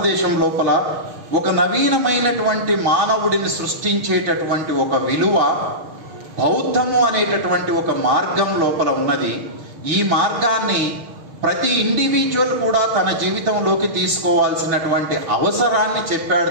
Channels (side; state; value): left; late; 6.0 ms